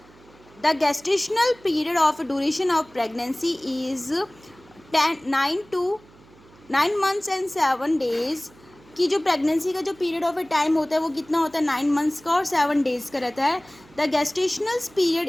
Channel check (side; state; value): right; noise; hum, 26 dB below the sound